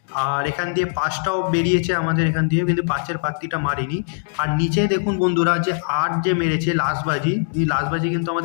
আর এখান দিয়ে পাঁচটাও বেরিয়েছে আমাদের এখান দিয়ে, কিন্তু পাঁচের প্রার্থীটা মারিনি। আর নিচে দেখুন বন্ধুরা, যে আট যে মেরেছে লাস্টবাজি, এই লাস্টবাজি কিন্তু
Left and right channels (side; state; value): right; silent; digital silence